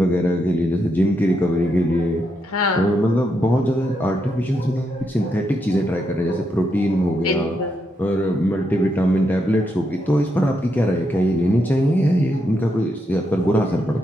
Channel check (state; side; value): normal; both; correlation 0.81